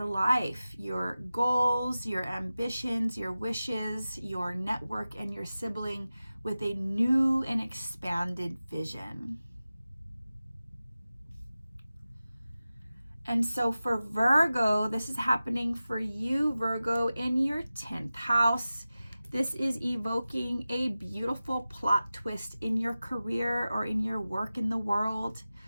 life, your goals, your ambitions, your wishes, your network, and your sibling with a new and expanded vision. And so for Virgo, this is happening for you, Virgo, in your 10th house. This is evoking a beautiful plot twist in your career or in your work in the world.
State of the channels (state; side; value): inverted; both; correlation -0.95